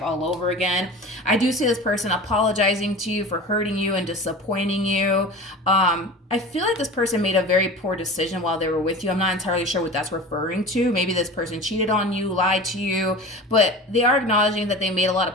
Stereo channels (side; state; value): both; normal; correlation 0.35